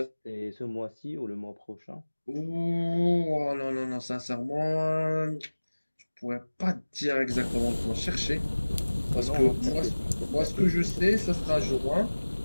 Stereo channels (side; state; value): both; inverted; correlation -1.00